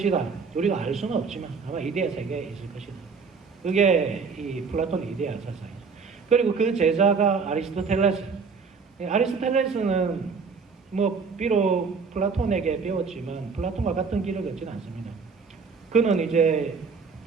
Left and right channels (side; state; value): left; quieter; 5.2 dB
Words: 우리가 알 수는 없지만 아마 이데아 세계에 있을 것이다. 그게 이 플라톤의 이데아 사상이죠. 그리고 그 제자가 아리스토텔레스. 아리스토텔레스는 뭐 비록 플라톤에게 배웠지만 플라톤과 같은 길을 걷지는 않습니다. 그는 이제